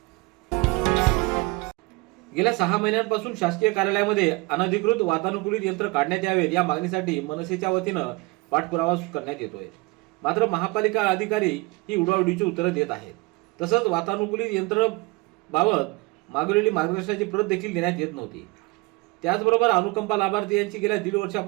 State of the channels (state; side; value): quieter; left; 25.1 dB